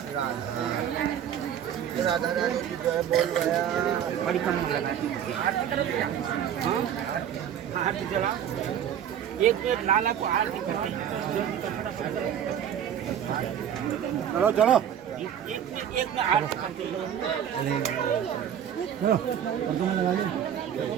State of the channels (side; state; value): left; quieter; 9.4 dB